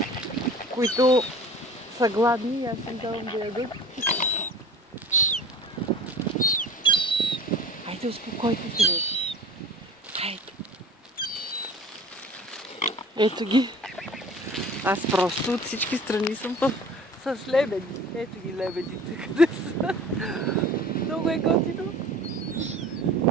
които са гладни и аз им давам да ядат. Хайде, успокойте се, бе. Хайде. Ето ги. Аз просто от всички страни съм с лебеди. Ето ги лебедите, къде са. Много е готино.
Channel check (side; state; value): both; normal; correlation 0.43